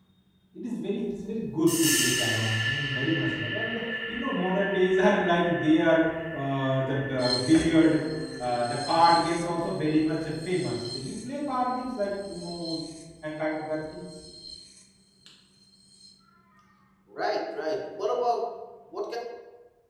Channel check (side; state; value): both; identical; correlation 1.00